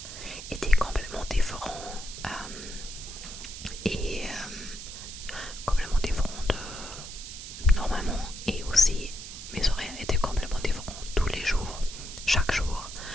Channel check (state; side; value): noise; right; hiss, 11 dB below the sound